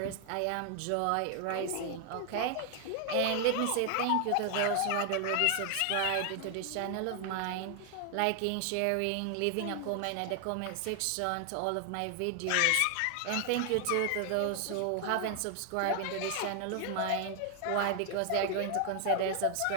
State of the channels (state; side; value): different; both; correlation 0.00